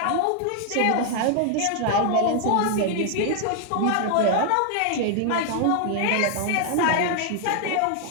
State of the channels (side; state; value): both; different; correlation 0.00